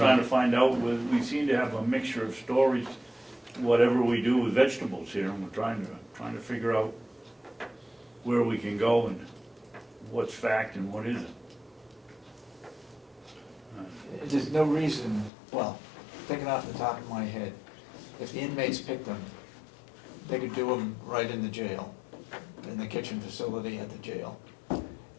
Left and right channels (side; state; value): right; drops out; at 15.3 s